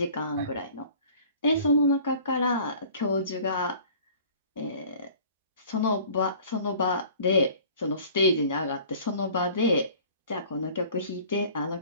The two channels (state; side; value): inverted; both; correlation -0.48